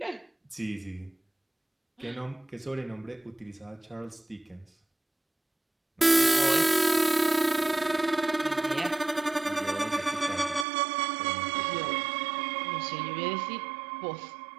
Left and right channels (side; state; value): left; drops out; at 10.7 s